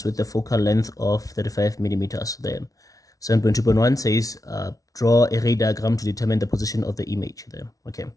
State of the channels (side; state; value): right; late; 0.18 ms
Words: with a focal length of 35 millimeters there. 7.2.1 says draw a ray diagram to determine the position of the image there. Okay,